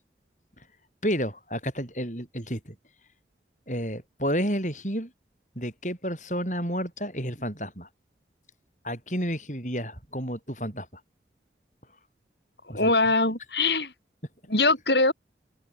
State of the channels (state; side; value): normal; both; correlation 0.04